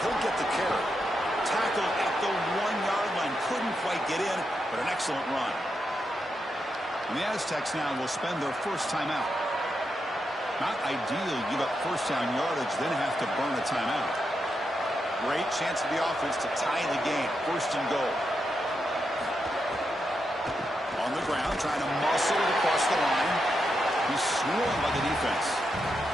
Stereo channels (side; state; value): both; normal; correlation 0.85